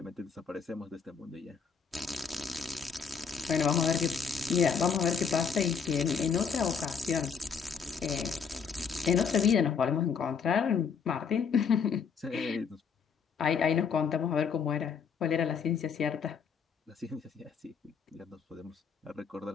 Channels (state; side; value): quieter; right; 6.2 dB